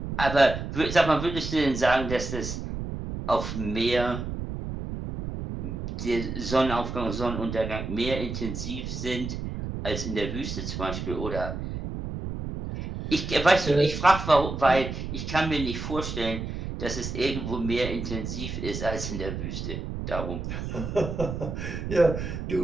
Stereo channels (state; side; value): noise; right; rumble, 5 dB below the sound